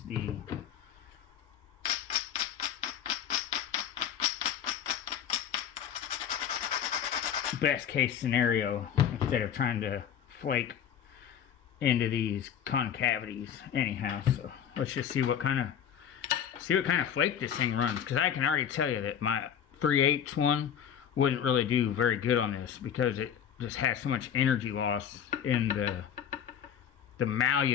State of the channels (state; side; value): quieter; right; 8.8 dB